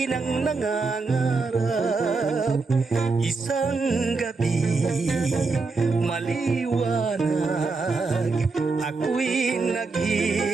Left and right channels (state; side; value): quieter; left; 4.1 dB